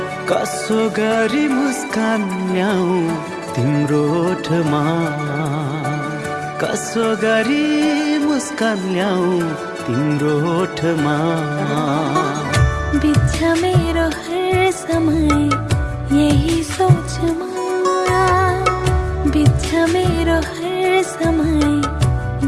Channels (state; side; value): identical; both; correlation 1.00